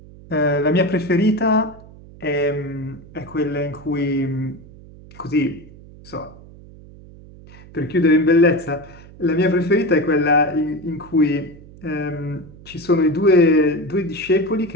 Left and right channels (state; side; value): noise; right; hum, 20 dB below the sound